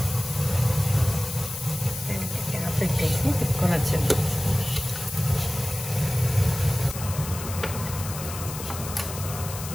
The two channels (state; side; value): noise; left; hiss, 9 dB below the sound